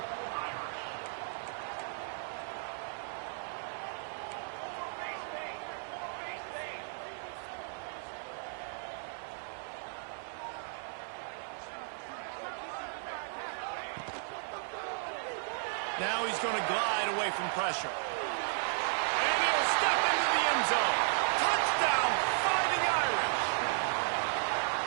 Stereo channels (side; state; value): left; silent; 55 dB below the other